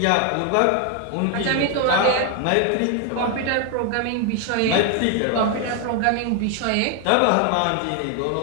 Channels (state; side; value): different; both; correlation 0.01